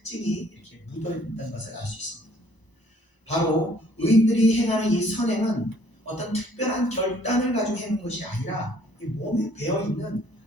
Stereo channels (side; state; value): right; late; 1.0 ms